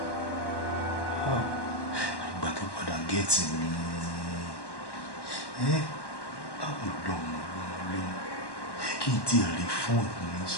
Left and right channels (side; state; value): right; late; 1.1 ms